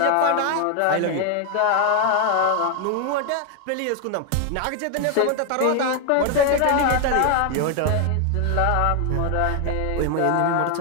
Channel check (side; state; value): both; different; correlation 0.00